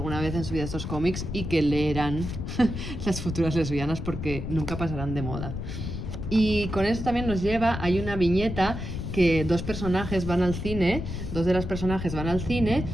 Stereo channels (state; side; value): noise; left; rumble, 6 dB below the sound